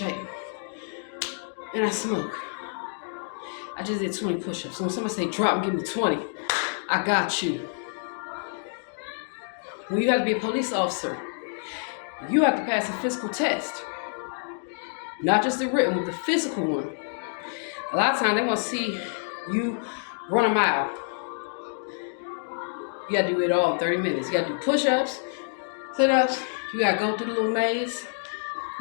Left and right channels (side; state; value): right; silent; digital silence